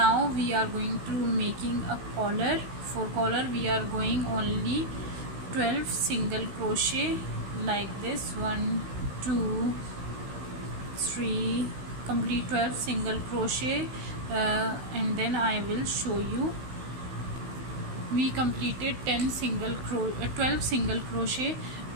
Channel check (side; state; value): left; late; 16 ms